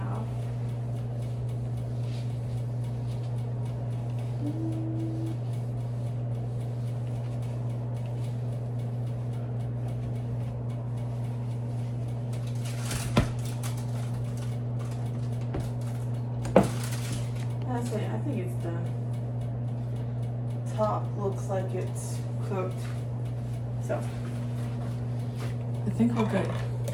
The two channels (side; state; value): both; identical; correlation 1.00